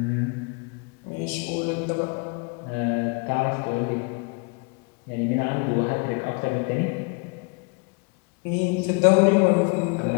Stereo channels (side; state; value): right; quieter; 32.8 dB